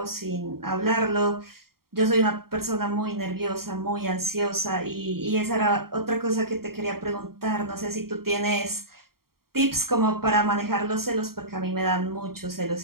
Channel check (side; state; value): left; late; 0.93 ms